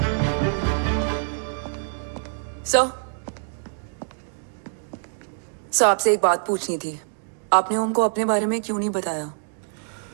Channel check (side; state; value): left; silent; digital silence